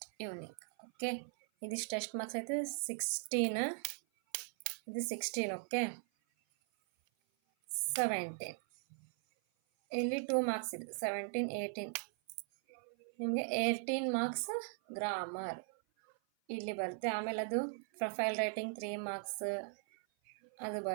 ಟ್ಯೂನಿಂಗ್. ಓಕೆ, ಇದಿಷ್ಟು ಎಷ್ಟು ಮಾರ್ಕ್ಸ್ ಆಯಿತು, 16. ಇದು 16. ಓಕೆ, 17. ಇಲ್ಲಿ 2 ಮಾರ್ಕ್ಸ್ ಇದೆ, 17, 18. ನಿಮಗೆ 18 ಮಾರ್ಕ್ಸ್ ಗ್ರಾಮರ್ ಇಲ್ಲಿ ಬರುತ್ತೆ. ಆಮೇಲೆ ಅದು ಪ್ರೊಫೈಲ್ ರೈಟಿಂಗ್ 3 ಮಾರ್ಕ್ಸ್ ಅದು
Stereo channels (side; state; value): left; silent; 52 dB below the other